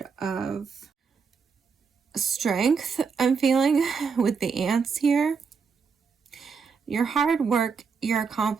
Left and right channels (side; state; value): left; quieter; 5.6 dB